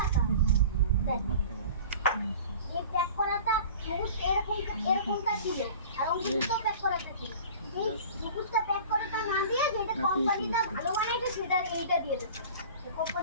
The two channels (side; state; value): both; inverted; correlation -0.41